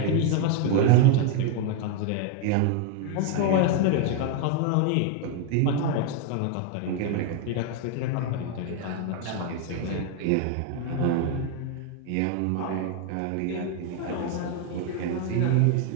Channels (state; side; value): different; both; correlation 0.01